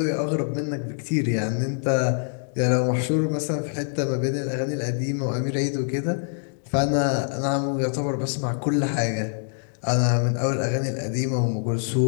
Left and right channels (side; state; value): right; silent; 62 dB below the other